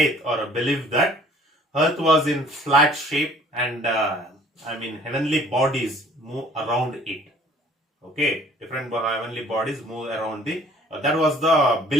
or a belief that Earth was in flat shape, and heavenly bodies move around it. Okay, different heavenly bodies move around the. That was the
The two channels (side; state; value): both; normal; correlation 0.54